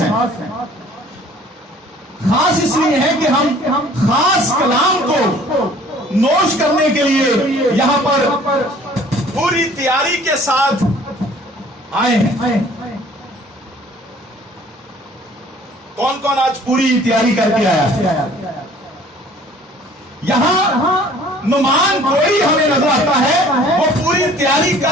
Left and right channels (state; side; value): normal; both; correlation 0.53